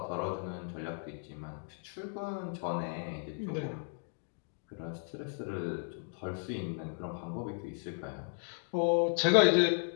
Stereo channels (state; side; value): silent; right; 54 dB below the other